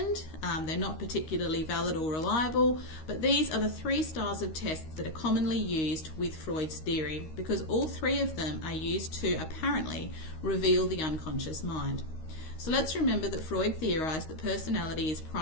they're not particularly valid or reliable, but these are the 3 styles of tests that are commonly used with Freud's theory, because all 3 of them are used to apparently reveal the unconscious mind. So let's remember that Freud theorized that personality is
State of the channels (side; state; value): right; late; 13 ms